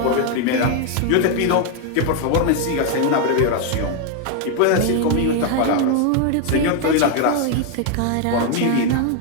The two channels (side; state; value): both; different; correlation 0.01